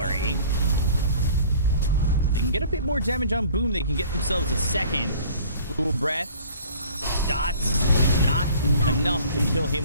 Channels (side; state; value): both; inverted; correlation -0.49